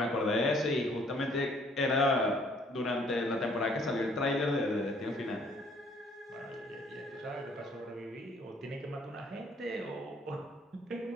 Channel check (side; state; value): both; normal; correlation 0.61